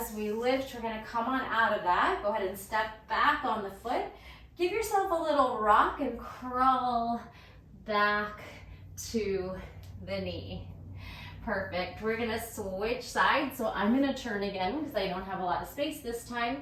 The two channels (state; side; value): identical; both; correlation 1.00